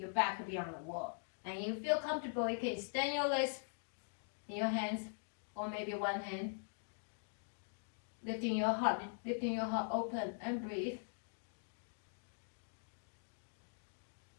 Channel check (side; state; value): right; silent; digital silence